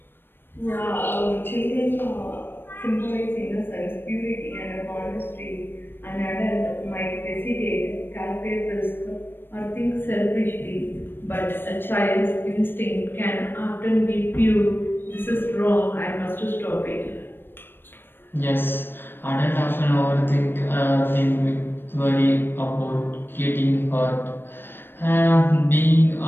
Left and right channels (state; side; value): late; right; 0.099 ms